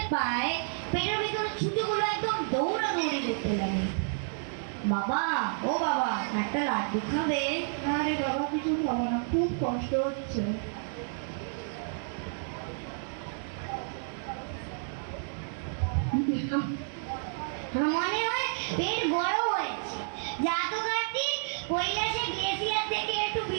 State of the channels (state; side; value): silent; left; digital silence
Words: পায়, পেটের ভিতরে ছুটিগুলো একদম দৌড়াদৌড়ি করতে লাগে। বাবা, ও বাবা, একটা লাড্ডু খাবে? না রে বাবা, কিছু খাবো না, খুব কষ্ট হচ্ছে। মনে হয় পেট বড় হয়েছে। যা তো কার্তিক, কৈলাসে গ্লেসিয়ার থেকে একটু